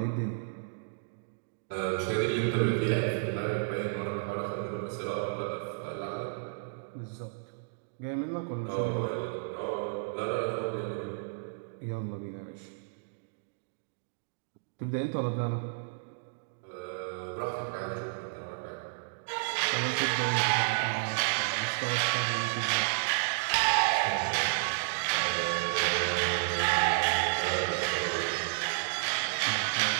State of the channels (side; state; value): left; silent; digital silence